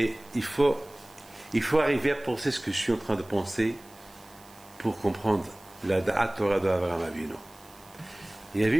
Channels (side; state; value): right; noise; hiss, 25 dB below the sound